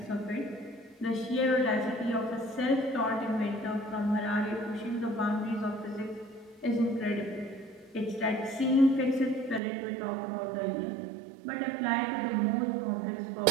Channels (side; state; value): left; drops out; at 9.6 s